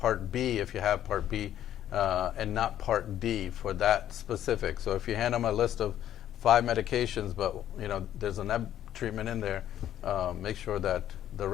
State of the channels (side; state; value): right; quieter; 11.5 dB